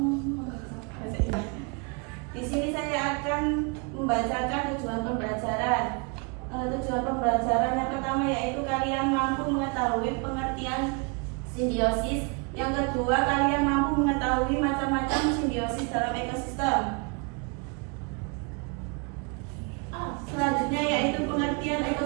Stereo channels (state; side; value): quieter; left; 32.9 dB